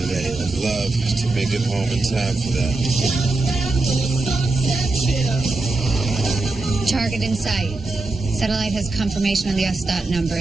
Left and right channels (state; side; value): quieter; left; 3.2 dB